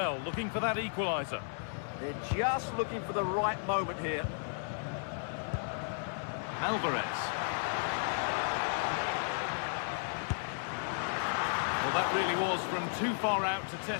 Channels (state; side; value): silent; right; 55 dB below the other